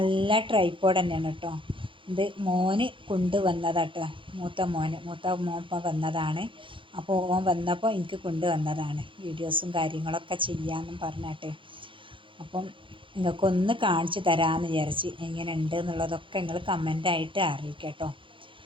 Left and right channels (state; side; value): late; left; 0.25 ms